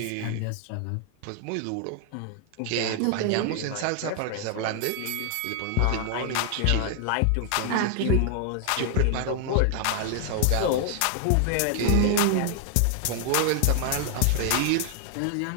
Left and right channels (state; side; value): different; both; correlation 0.00